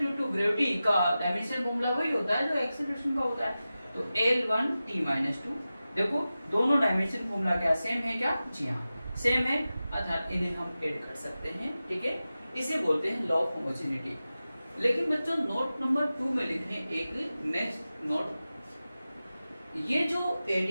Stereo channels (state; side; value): inverted; both; correlation -0.94